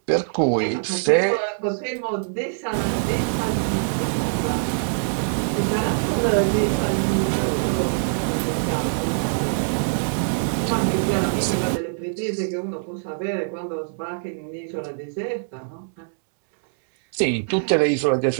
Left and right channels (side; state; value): left; silent; digital silence